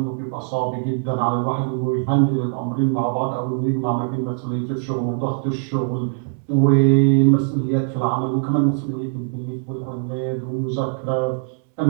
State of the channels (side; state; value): left; silent; digital silence